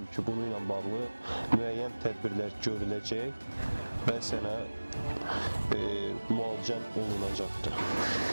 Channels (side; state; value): both; inverted; correlation -1.00